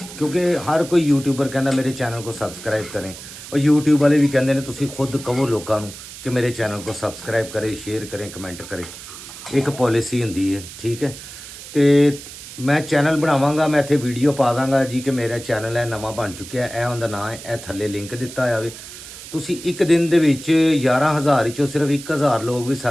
ਕਿਉਂਕਿ ਹਰ ਕੋਈ ਯੂਟਿਊਬਰ ਕਹਿੰਦਾ ਮੇਰੇ ਚੈਨਲ को सब्सक्राइब करें, और यूट्यूब वाले भी कहते हैं ਤੁਸੀਂ खुद कहो लोगों ਨੂੰ कि मेरे चैनल को सब्सक्राइब करें, शेयर करें, कमेंट करें। एक पॉलिसी ਹੁੰਦੀ ਹੈ, ठीक है। ਤੇ ਮੈਂ ਚੈਨਲ ਬਣਾਵਾਂਗਾ, ਮੈਂ ਇੱਥੇ ਵੀਡੀਓ ਪਾ ਦਾਂਗਾ ਜੀ ਕਿ ਮੇਰਾ ਚੈਨਲ ਹੈ ਨਵਾਂ ਬਣ ਚੁੱਕਿਆ, ਇਹ ਉਹਦਾ ਨਾਂ ਹੈ, ਇਹ ਥੱਲੇ ਲਿੰਕ ਦਿੱਤਾ ਹੋਇਆ ਵੇ। ਤੁਸੀਂ ਇੱਕ ਦਿਨ ਦੇ ਵਿੱਚ 11,000 ਵਿੱਚੋਂ ਸਿਰਫ 1,000 ਲੋਕ ਵੀ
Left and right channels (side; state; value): right; noise; hiss, 14 dB below the sound